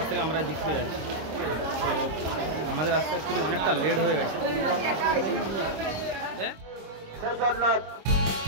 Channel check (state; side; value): late; left; 26 ms